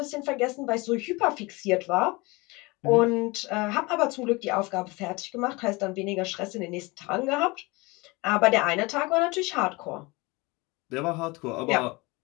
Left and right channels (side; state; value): right; quieter; 24.6 dB